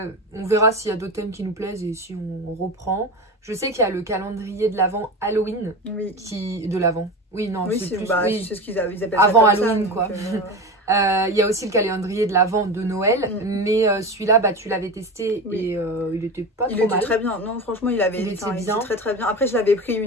verra s'il y a d'autres thèmes qui nous plaisent et si on reprend. Je sais qu'il y a le calendrier de l'Avent Halloween de l'Avent. Oui, non, c'est plus... c'est ce qu'ils appellent avant ça Halloween, quoi. Il y a aussi le calendrier de l'Avent de Noël, mais celui-là, tu l'avais testé et il était pas trop mal. Il était très bien. Non, franchement, il était très très bien. Après, je l'avais pris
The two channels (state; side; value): normal; both; correlation 0.26